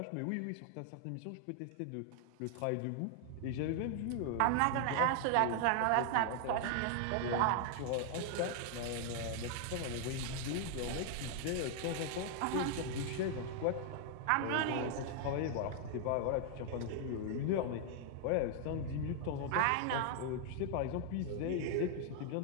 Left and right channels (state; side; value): different; both; correlation 0.00